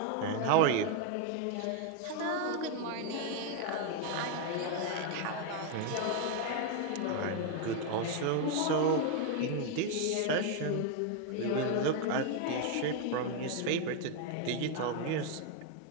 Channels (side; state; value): both; different; correlation 0.01